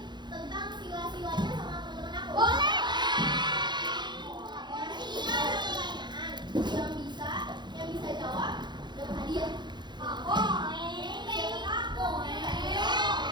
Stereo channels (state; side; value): late; left; 0.21 ms